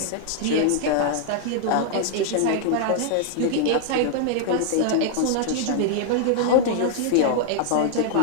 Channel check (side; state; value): both; different; correlation -0.01